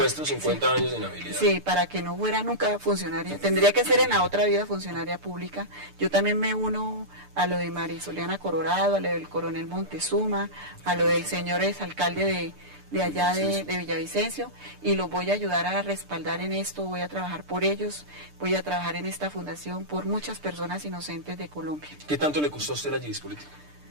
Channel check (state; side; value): late; left; 6.8 ms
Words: 50 sí, años de inhabilidad. Sí, para que no fuera nunca funcionaria. Tendría que ser en la otra vida funcionaria pública. Yo también me uno a lo de Marisoliana Colorado, a lo del coronel Montezuma, a lo del señor exalcalde de allá de Villavicencio, y los voy a ayudar a respaldar en esto, voy a trabajar por ellos, voy a trabajar en esta fundación por muchas personas inocentes de Colombia. ¿Qué tanto le costó a usted la Gidis política?